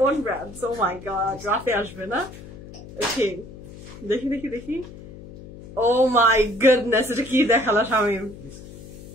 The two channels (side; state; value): left; noise; hum, 16 dB below the sound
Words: ব্র্যান্ড। ও মাই গড, রাতে আসবে না? ওকে, দেখি দেখি দেখি। Oh my goodness, এটা কি দেখালো শামিম,